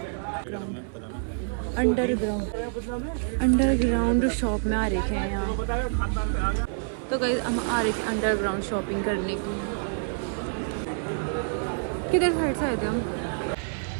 अंडरग्राउंड शॉप में आ रहे थे यहाँ। तो गाइस हम आ रहे थे अंडरग्राउंड शॉपिंग करने की। किधर साइड से आए थे हम।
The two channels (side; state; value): left; silent; 58 dB below the other